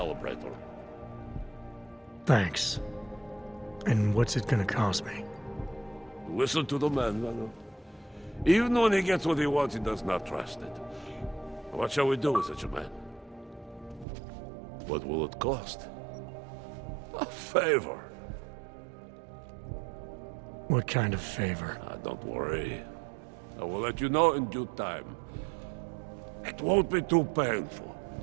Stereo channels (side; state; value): left; drops out; at 14.1 s